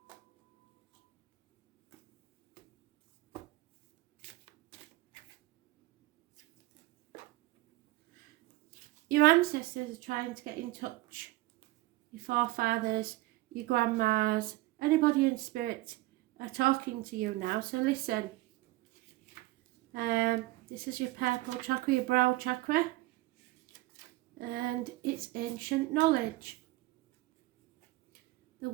Your ancestors are trying to get in touch. Your forefathers, your grandmas, anybody in spirit are talking to you now. So listen. This is your purple chakra, your brow chakra. And it's ancient knowledge. The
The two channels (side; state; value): left; quieter; 19.3 dB